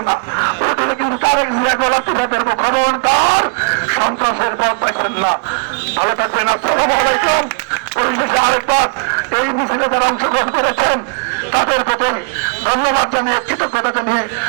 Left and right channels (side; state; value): left; quieter; 36.1 dB